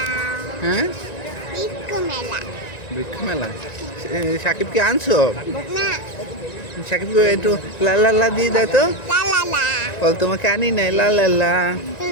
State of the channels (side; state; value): right; late; 1.9 ms